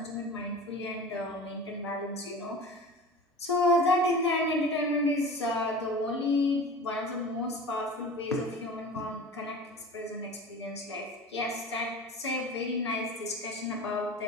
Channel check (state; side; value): normal; both; correlation 0.36